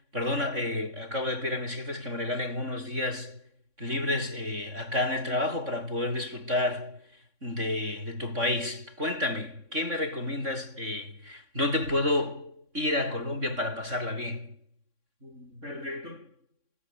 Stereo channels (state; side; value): late; left; 3.6 ms